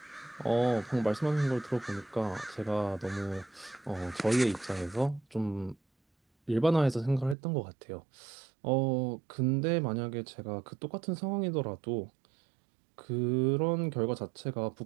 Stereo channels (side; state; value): left; drops out; at 7.4 s